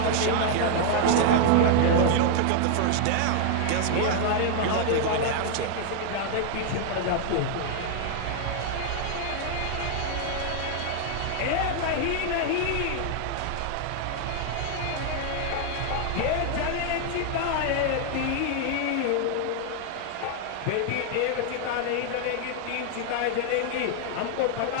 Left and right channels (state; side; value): different; both; correlation 0.00